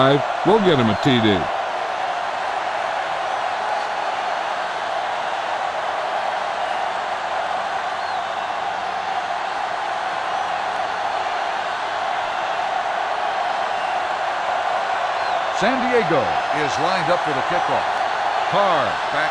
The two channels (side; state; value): both; identical; correlation 1.00